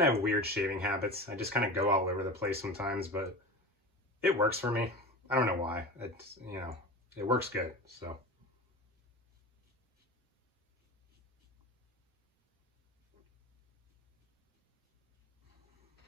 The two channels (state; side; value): normal; both; correlation 0.30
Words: of have weird shaving habits. I just kind of go all over the place sometimes, but it works for me. I don't know why. It's, you know, it works good, so.